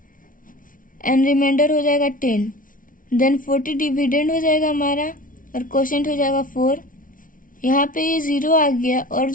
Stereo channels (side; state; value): right; late; 0.39 ms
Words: एंड रिमाइंडर हो जाएगा 10। देन 40 डिविडेंड हो जाएगा हमारा और क्वोशंट हो जाएगा 4। यहाँ पे ये 0 आ गया और